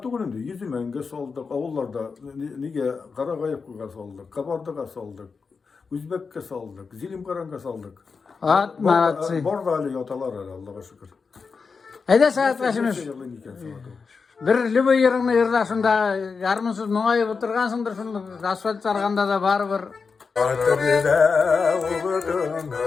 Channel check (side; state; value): right; quieter; 5.1 dB